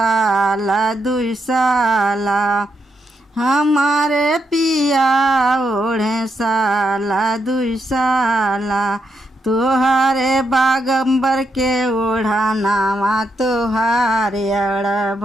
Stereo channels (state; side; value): normal; both; correlation 0.80